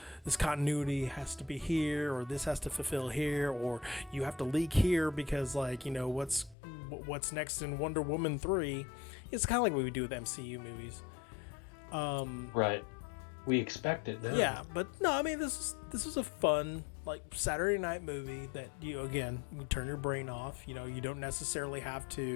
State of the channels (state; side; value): drops out; right; at 6.6 s